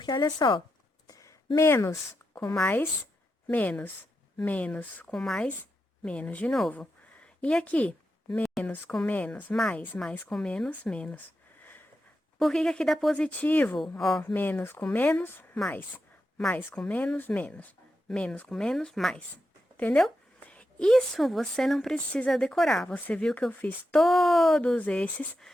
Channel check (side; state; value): both; normal; correlation 0.87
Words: olha só, menos com mais, menos, menos com mais, menos de novo. E aqui, menos com menos, mais com menos, menos. Por que que aqui dá positivo? Ó, menos com menos, mais com menos, menos com menos, mais. Entendeu? Isso você não precisa decorar. Você viu que eu fiz todos esses